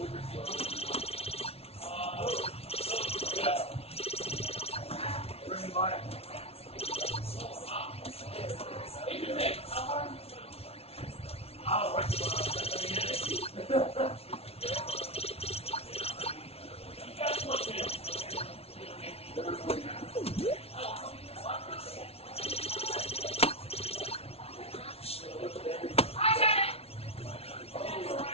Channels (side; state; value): right; late; 0.30 ms